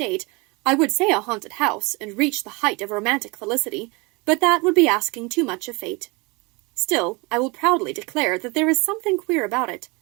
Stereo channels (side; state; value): left; quieter; 27.4 dB